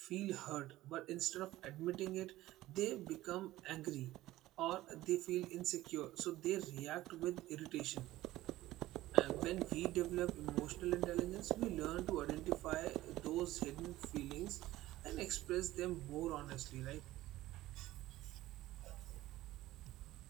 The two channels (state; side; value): quieter; left; 16.1 dB